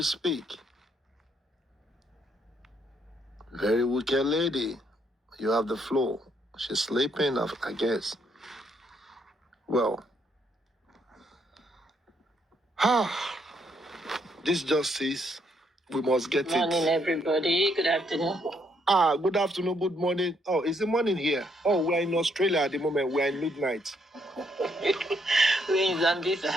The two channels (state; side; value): normal; both; correlation 0.72